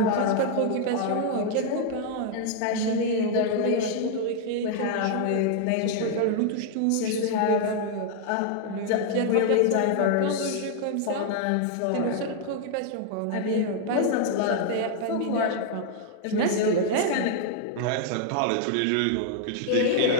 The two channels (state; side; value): different; both; correlation 0.00